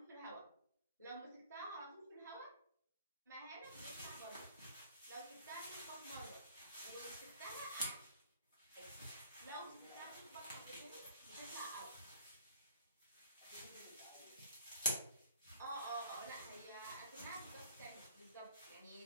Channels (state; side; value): inverted; both; correlation -0.54